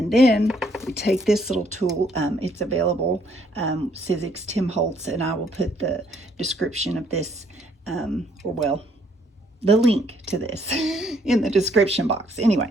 then we take this little tool. It's available, Sizzix timholtz, and I will put the description of this, or well, the link to this in the description box.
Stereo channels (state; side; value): normal; both; correlation 0.67